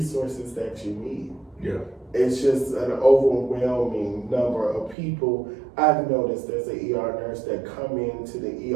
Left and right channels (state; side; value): drops out; left; at 5.0 s